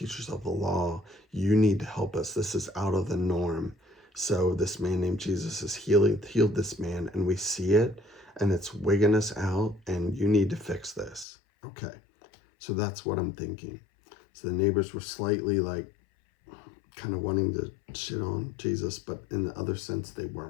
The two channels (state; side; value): drops out; right; at 11.2 s